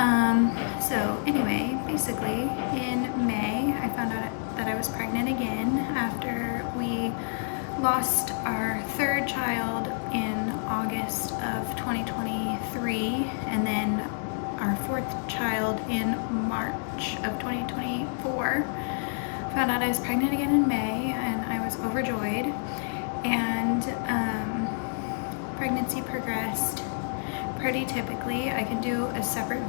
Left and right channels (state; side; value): silent; right; digital silence